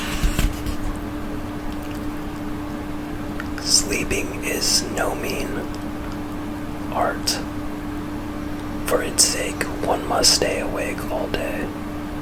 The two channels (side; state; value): both; identical; correlation 1.00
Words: Sleeping is no mean art. For its sake, one must stay awake all day.